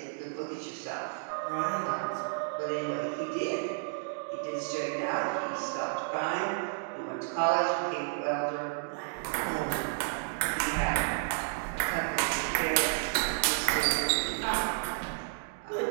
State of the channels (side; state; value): left; silent; digital silence